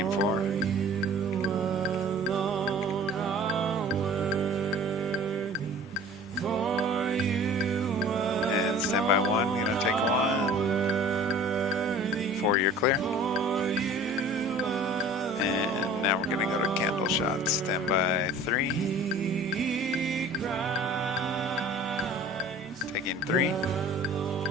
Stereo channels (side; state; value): both; normal; correlation 0.45